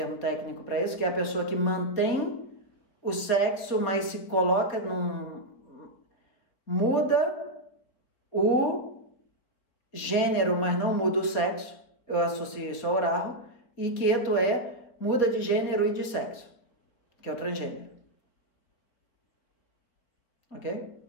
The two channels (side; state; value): right; late; 4.2 ms